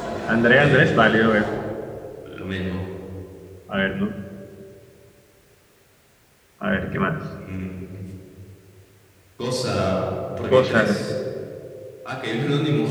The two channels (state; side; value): identical; both; correlation 1.00